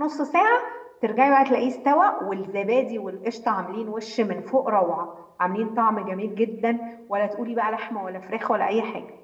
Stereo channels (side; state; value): both; identical; correlation 1.00